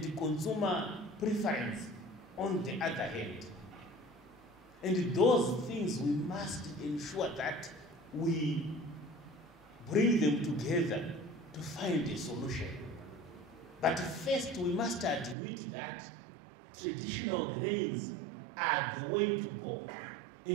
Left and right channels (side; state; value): left; drops out; at 15.4 s